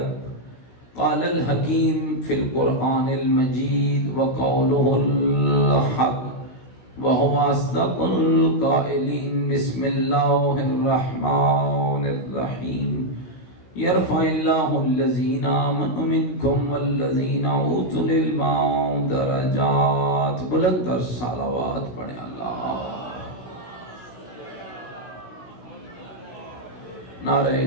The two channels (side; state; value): right; late; 16 ms